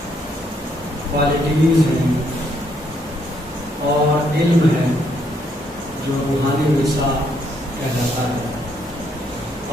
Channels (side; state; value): both; normal; correlation 0.72